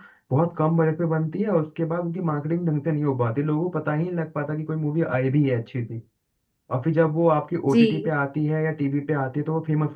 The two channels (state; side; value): identical; both; correlation 1.00